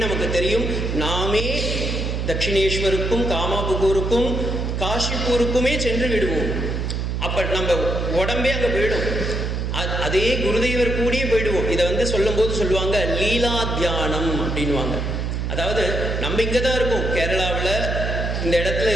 நமக்கு தெரியும். நாமே தட்சிணேஸ்வருக்கும் காமாபுகூருக்கும் காஷிப்பூருக்குமே சென்று விடுவோம். அப்போ நம்ம உடம்பே அங்கே போயிடும். அதே குருதேவர் கூடியே போயிடுவோம். இதை சொல்லும்போது சொல்லுவாங்க லீலா தியானம் அப்படின்வாங்க. அதாவது நம்ம இங்கே தான் இருக்கோம், கேரளாவில் இந்த இடத்துல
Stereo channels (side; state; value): right; noise; hum, 1 dB below the sound